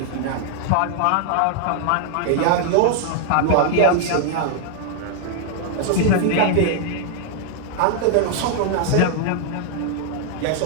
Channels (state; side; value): different; both; correlation 0.00